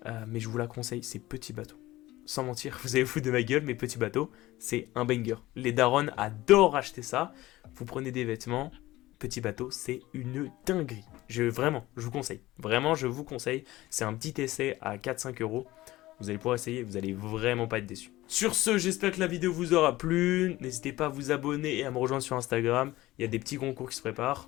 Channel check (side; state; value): right; quieter; 17.5 dB